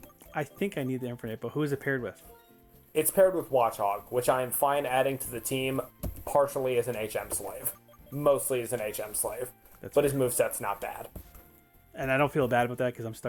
I think I need the Infernape, but who is it paired with? It's paired with Watchog, which I am fine adding to the team partially as an HM slave. Mostly as an HM slave. But his moveset's not bad. And I don't feel bad about that because I'm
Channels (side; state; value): both; identical; correlation 1.00